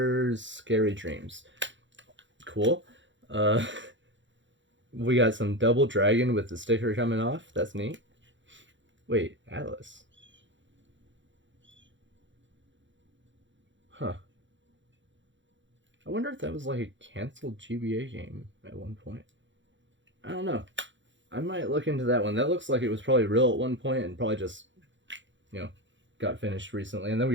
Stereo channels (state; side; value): late; left; 0.54 ms